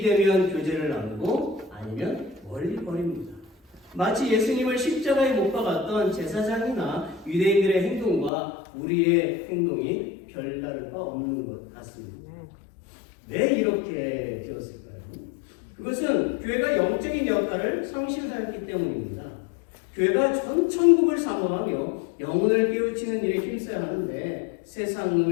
되면 교제를 나누고 아니면 멀리 버립니다. 마치 예수님을 십자가에 못 박았던 제사장이나 유대인들의 행동과 우리의 행동이 별다를 바 없는 것 같습니다. 왜 이렇게 되었을까요? 그것은 교회가 영적인 역할을 상실하였기 때문입니다. 교회가 전 천국을 사모하며 영혼을 깨우치는 일에 힘써야 하는데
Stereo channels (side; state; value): right; drops out; at 8.3 s